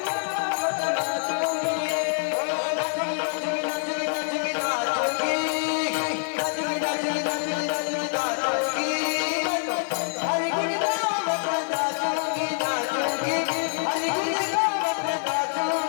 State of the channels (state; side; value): silent; right; digital silence